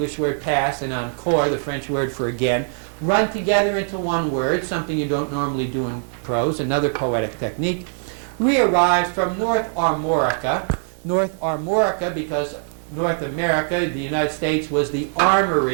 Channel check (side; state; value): left; silent; 64 dB below the other